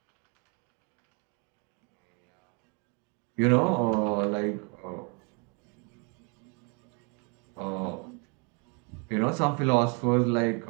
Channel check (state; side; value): quieter; left; 34.7 dB